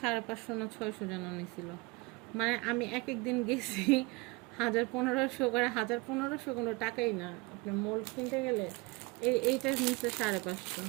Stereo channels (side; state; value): left; quieter; 25.5 dB